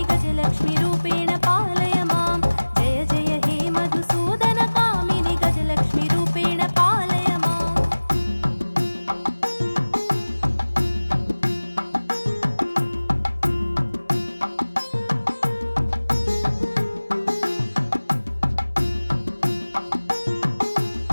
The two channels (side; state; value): both; inverted; correlation -1.00